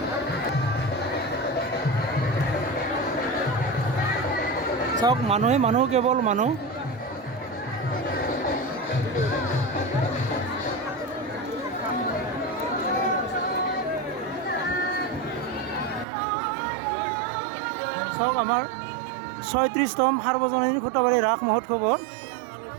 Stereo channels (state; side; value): drops out; left; at 16.1 s